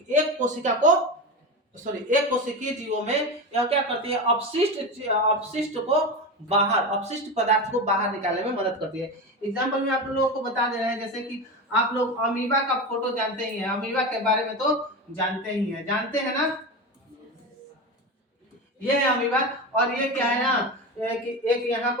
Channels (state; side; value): normal; both; correlation 0.22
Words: एक कोशिकीय जीवों में यह क्या करती है, अपशिष्ट को बाहर, अपशिष्ट पदार्थ को बाहर निकालने में मदद करती है। एग्जाम्पल में आप लोगों को बता दे रहे हैं, जैसे कि आप लोग अमीबा का फोटो जानते ही हैं, अमीबा के बारे में तो जानते ही हैं, जानते हैं ना, ये है अमीबा। और ये क्या है ना कि एक यहाँ